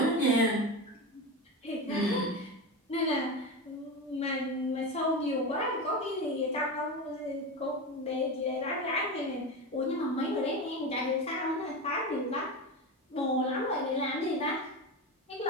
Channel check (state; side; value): normal; both; correlation 0.22